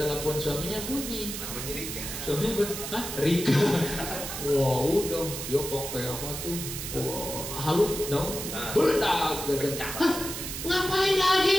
telepon suaminya bunyi. Namanya Rika. Suaminya hah? Rika. Wah udah, dia pakai apa tuh? Wah, halu dong. Beledak gitu. Hah? Ngapain lagi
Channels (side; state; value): right; noise; hiss, 6 dB below the sound